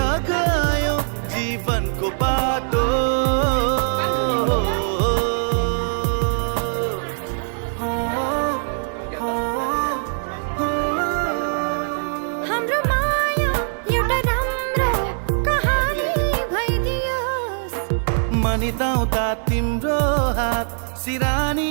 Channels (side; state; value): left; silent; digital silence